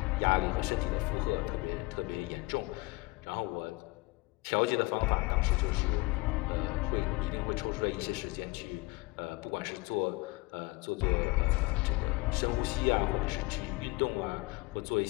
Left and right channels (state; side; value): quieter; right; 24.2 dB